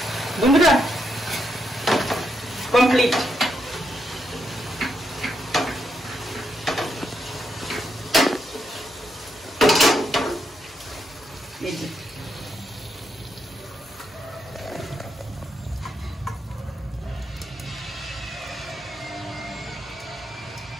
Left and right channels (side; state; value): both; normal; correlation 0.80